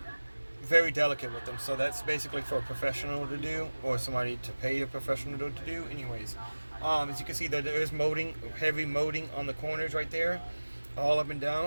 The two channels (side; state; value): both; inverted; correlation -1.00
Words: very delicate with them. So that's basically for a professional to do, or somebody to pay a professional to do. Anyways, as you can see, there is molding, heavy molding on the corners right there, all up and